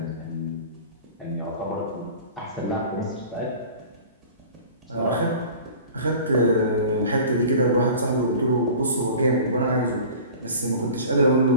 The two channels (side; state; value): both; inverted; correlation -0.41